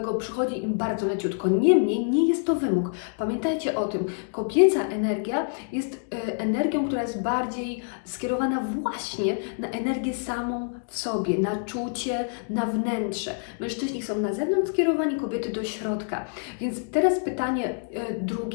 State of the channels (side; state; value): right; silent; digital silence